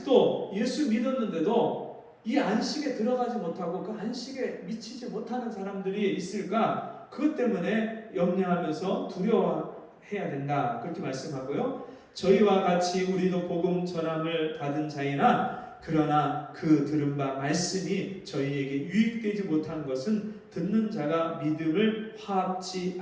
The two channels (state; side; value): identical; both; correlation 1.00